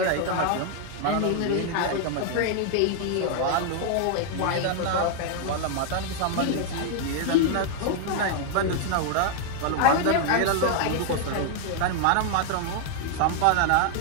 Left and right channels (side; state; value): both; different; correlation 0.00